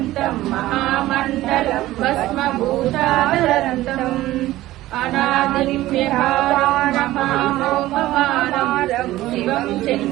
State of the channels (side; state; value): left; quieter; 16.1 dB